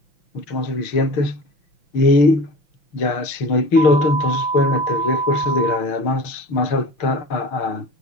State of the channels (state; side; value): late; right; 6.5 ms